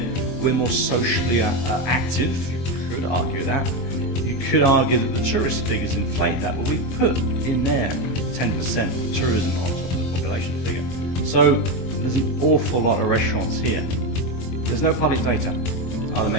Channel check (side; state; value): right; late; 23 ms